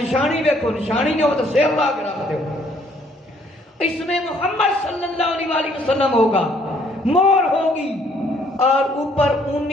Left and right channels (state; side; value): normal; both; correlation 0.64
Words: نشانی ویکھو، نشانی نہیں ہو تو سیر لا کے رکھ دیو، اس میں محمد صلی اللہ علیہ وسلم ہوگا، مور ہوگی اور اوپر